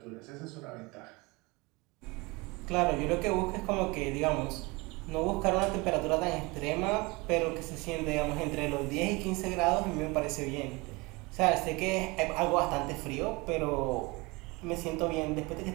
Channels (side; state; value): left; quieter; 25.2 dB